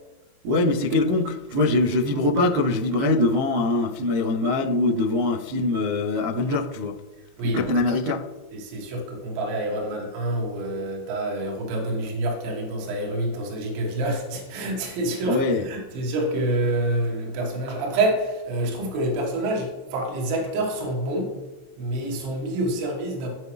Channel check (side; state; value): left; late; 23 ms